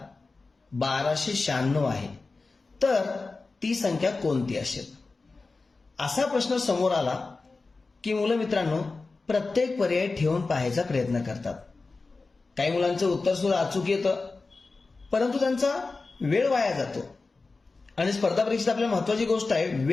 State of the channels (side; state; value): right; quieter; 3.8 dB